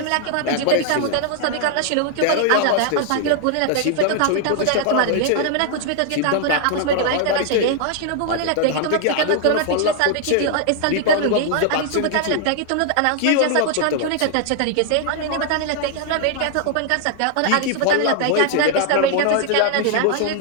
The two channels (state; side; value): different; both; correlation 0.00